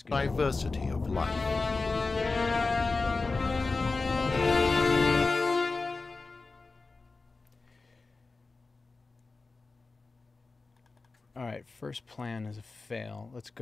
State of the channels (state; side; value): quieter; right; 3.8 dB